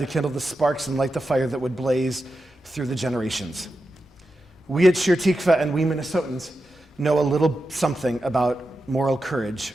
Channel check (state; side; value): normal; both; correlation 0.90